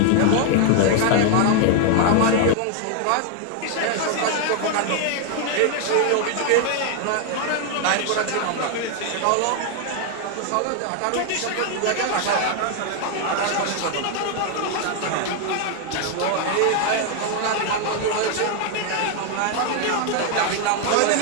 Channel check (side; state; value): both; different; correlation 0.01